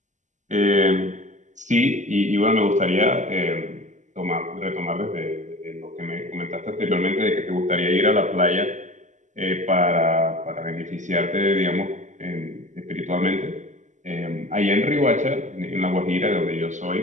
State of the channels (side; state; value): left; late; 0.35 ms